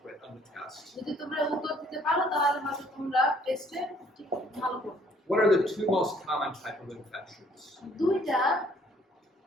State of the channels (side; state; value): both; normal; correlation 0.61